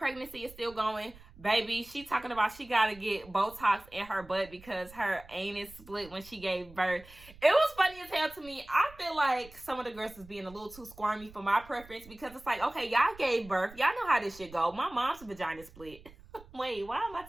is still going. Baby, she talking about she got to get Botox in her butt because her anus split when she gave birth. It was funny as hell to me. I feel like some of the girls is being a little too squirmy for my preference because it's like, okay, y'all gave birth. Y'all know how this shit go. My mom's vagina split. Wait, why am I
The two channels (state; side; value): noise; right; rumble, 21 dB below the sound